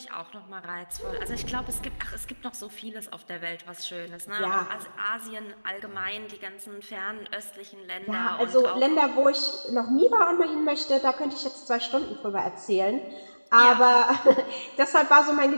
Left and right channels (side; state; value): both; inverted; correlation -1.00